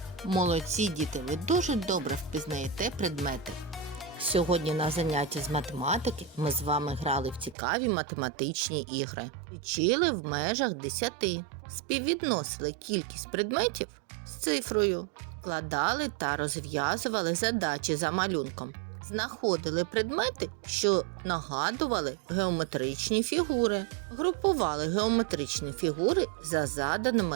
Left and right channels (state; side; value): drops out; left; at 7.6 s